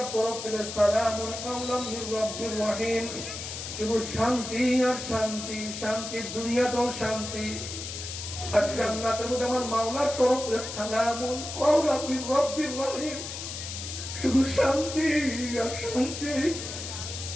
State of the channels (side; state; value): left; noise; hiss, 8 dB below the sound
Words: তরফ থেকে সালামুন কাওলাম মির রাব্বির রহিম, শুধু শান্তি আর শান্তি, শান্তি দুনিয়াতেও শান্তি, আর জান্নাতের মধ্যে আমার মাওলার তরফ থেকে সালামুন কাওলাম মির রাব্বির রহিম, শুধু শান্তি আর শান্তি।